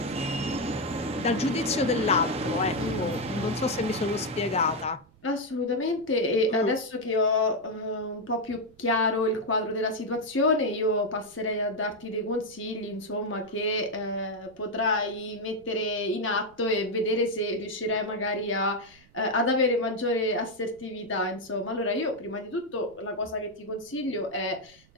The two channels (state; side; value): noise; right; rumble, 28 dB below the sound